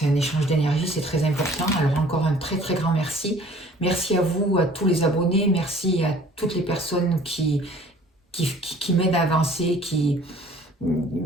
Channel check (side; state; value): both; normal; correlation 0.52